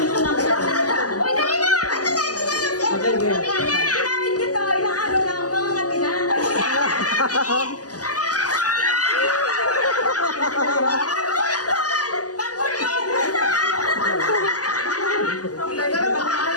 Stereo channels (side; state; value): right; late; 0.67 ms